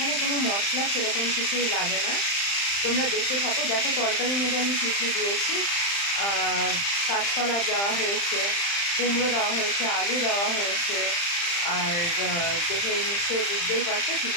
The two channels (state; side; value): late; right; 35 ms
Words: কোনো মশলা সেরকম কিছুই লাগে না, তোমরা দেখতে থাকো। দেখো তরকারির মধ্যে আমি কী কী দিয়েছি। কাঁচকলা দেওয়া হয়েছে, কুমড়ো দেওয়া হয়েছে, আলু দেওয়া হয়েছে, আর দেখে নিশ্চয়ই বুঝতেই পারছো